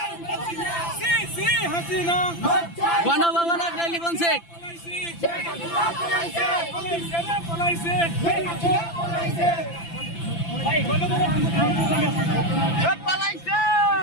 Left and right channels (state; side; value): late; right; 5.9 ms